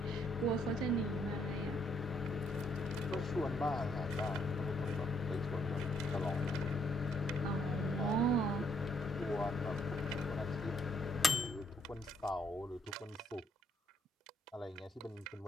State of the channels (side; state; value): both; normal; correlation 0.71